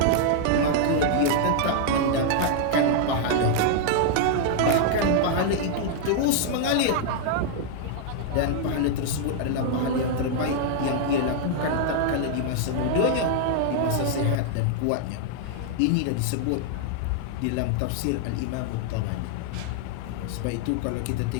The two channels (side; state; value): both; different; correlation -0.01